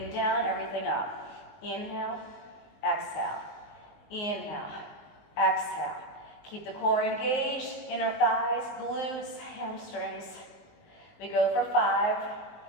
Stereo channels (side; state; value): right; late; 19 ms